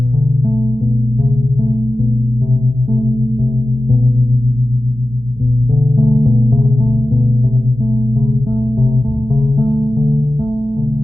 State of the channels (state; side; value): normal; both; correlation 0.94